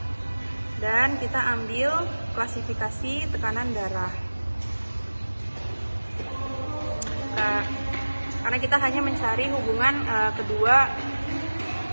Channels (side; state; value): both; inverted; correlation -1.00